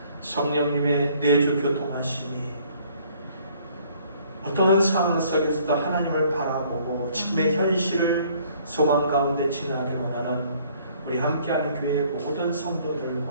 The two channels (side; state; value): both; inverted; correlation -0.60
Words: 성령님의 내주 교통하심이 어떤 상황 속에서도 하나님을 바라보고 지금의 현실을 소망 가운데 지나기를 원하는 우리 함께하는 교회의 모든